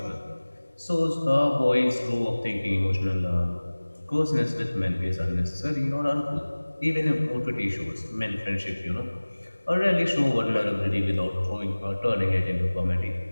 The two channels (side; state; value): both; inverted; correlation -1.00